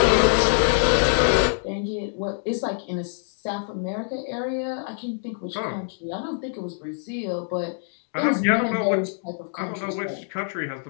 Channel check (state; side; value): silent; right; digital silence